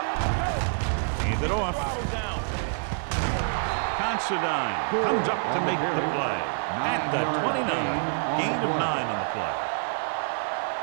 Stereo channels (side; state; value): left; silent; digital silence